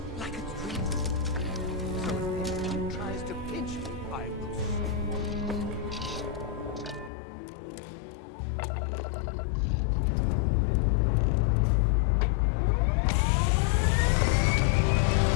like a dream. So if anyone tries to pinch me, I will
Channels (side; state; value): right; drops out; at 7.1 s